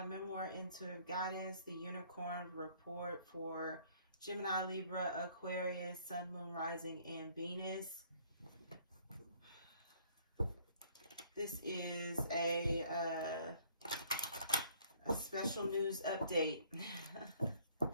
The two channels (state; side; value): inverted; both; correlation -0.60